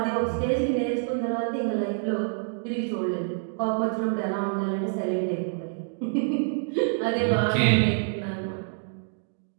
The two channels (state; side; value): silent; left; digital silence